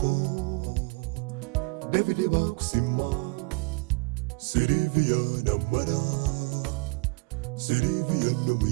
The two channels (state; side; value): quieter; left; 28.4 dB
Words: David bakusima Sylvia na Mara Sylvia no